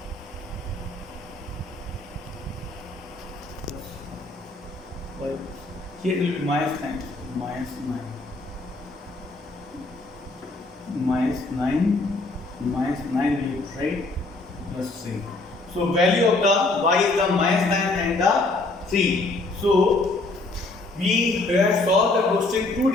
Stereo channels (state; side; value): quieter; right; 3.1 dB